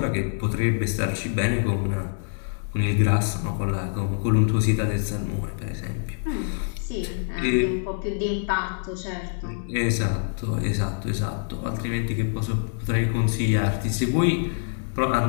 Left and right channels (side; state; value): right; silent; digital silence